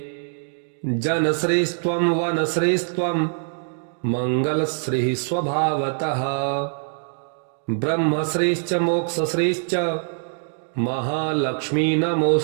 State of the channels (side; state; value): left; silent; digital silence